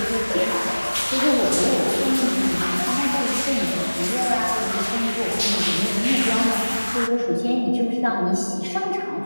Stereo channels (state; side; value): inverted; both; correlation -1.00